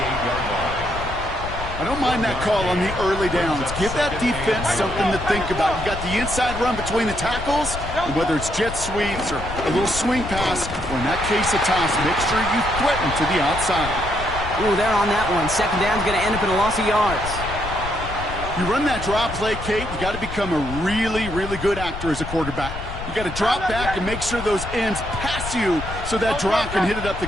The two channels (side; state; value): left; noise; rumble, 8 dB below the sound